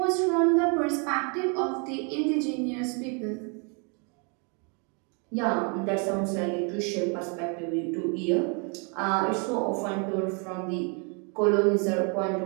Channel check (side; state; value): left; quieter; 35.8 dB